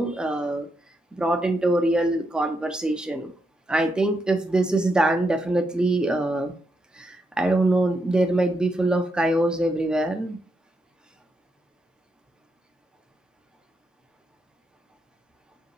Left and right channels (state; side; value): normal; both; correlation 0.81